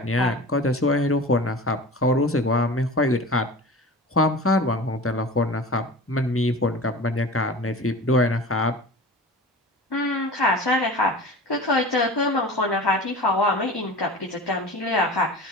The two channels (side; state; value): both; normal; correlation 0.36